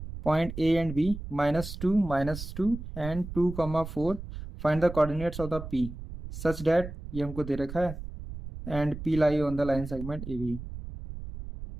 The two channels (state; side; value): noise; right; rumble, 10 dB below the sound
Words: -2 -2 and 2, 4 find the coordinates of the P such that, ये हमको दे रखा है, and P lie on the line segment A B.